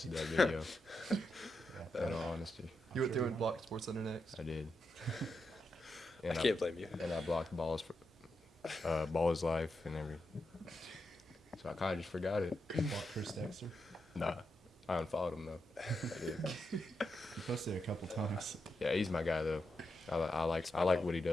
that video. yeah. In all honesty, you went sure through you and blocked Sports Center next. I did. I can't blame you. And I blocked Ball is Life and everything. So I kind of just forgot it. Blocked Chris Dexter. Nah, I unfollowed him though. I did. You posted it a couple times. Yeah, he's my guy though. I like what he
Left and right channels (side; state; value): both; normal; correlation 0.86